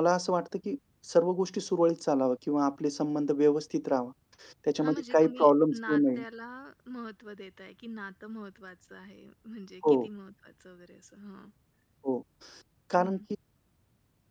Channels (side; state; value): both; identical; correlation 1.00